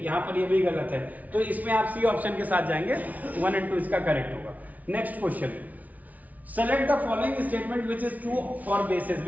पर ये भी गलत है, तो इसमें आप सी ऑप्शन के साथ जाएंगे, 1 और 2 इसका करेक्ट होगा। Next question, select the following statement which is true for bases.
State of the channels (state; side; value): late; left; 0.073 ms